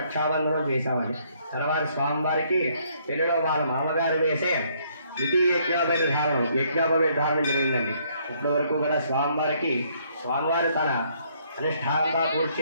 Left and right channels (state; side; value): inverted; both; correlation -0.67